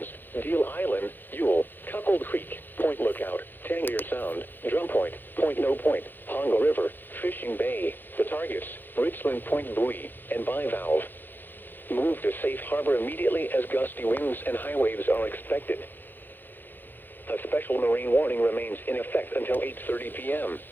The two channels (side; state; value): right; late; 0.092 ms